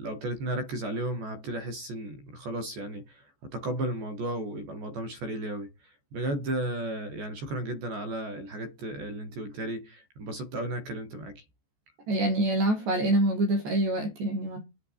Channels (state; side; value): late; left; 14 ms